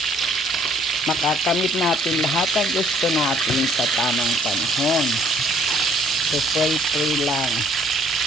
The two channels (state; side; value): normal; both; correlation 0.61